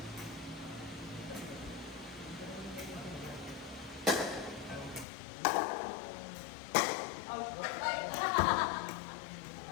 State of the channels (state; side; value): drops out; right; at 5.1 s